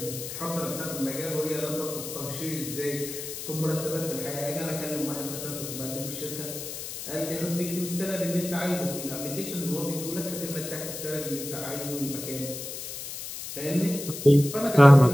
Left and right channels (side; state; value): left; noise; hiss, 8 dB below the sound